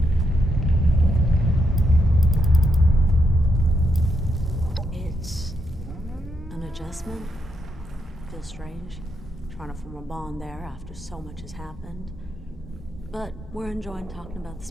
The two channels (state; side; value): normal; both; correlation 0.80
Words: It's an adjustment. Feels strange, trying to form a bond there after so much has happened. But we're enjoying talking about the